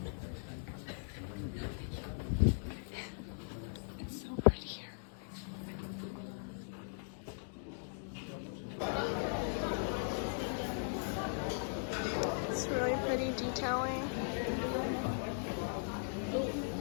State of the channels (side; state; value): right; silent; digital silence